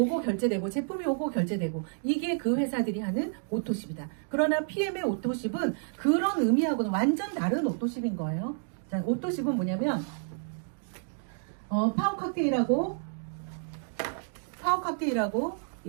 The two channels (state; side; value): silent; left; digital silence